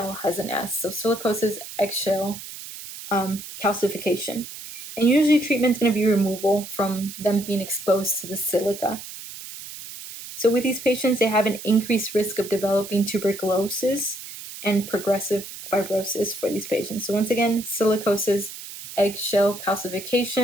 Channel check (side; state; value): right; noise; hiss, 12 dB below the sound